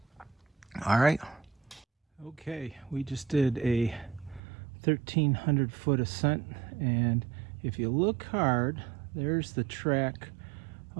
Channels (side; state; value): left; drops out; at 4.4 s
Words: All right. Okay, we just did a 1,300 foot ascent, and if you look hard, there's the track